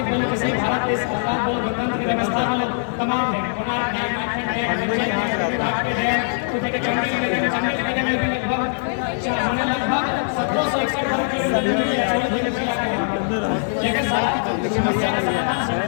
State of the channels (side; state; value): right; silent; digital silence